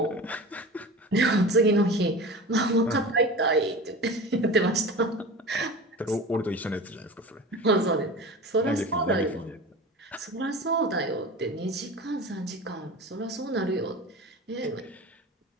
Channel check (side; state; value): both; normal; correlation 0.33